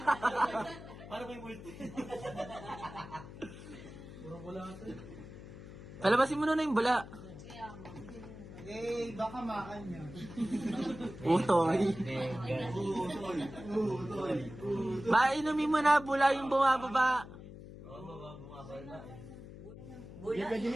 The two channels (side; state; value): left; noise; hum, 14 dB below the sound